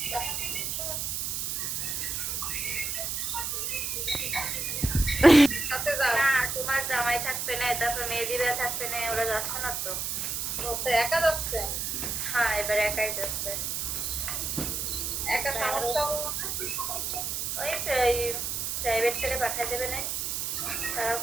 না তোমার জামাই থাকবে না, তারপর মেহেদিরা থাকবে না, ওরা যাচ্ছে না তো। ও তো একা যাচ্ছে? হ্যাঁ এবার একাই যাচ্ছে। একা সমস্যা হলো না? ওই প্রাইভেট থেকে পাঠিয়ে দেবে না তারা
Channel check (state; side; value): noise; right; hiss, 1 dB below the sound